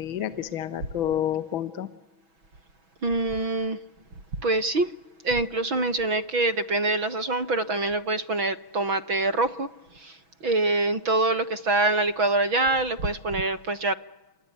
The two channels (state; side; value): late; left; 6.1 ms